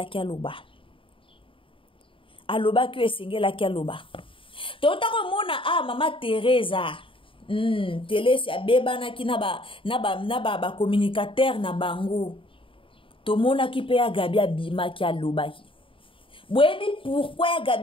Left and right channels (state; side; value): late; right; 0.25 ms